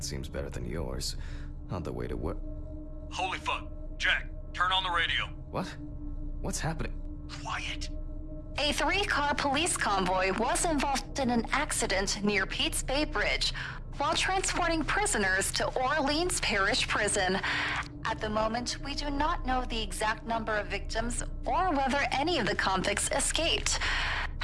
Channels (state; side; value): identical; both; correlation 1.00